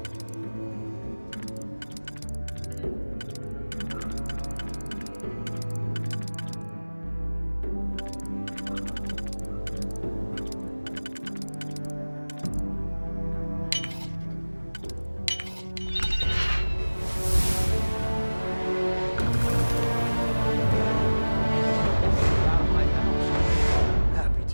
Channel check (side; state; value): both; inverted; correlation -1.00